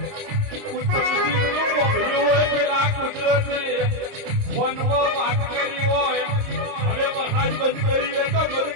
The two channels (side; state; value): left; late; 30 ms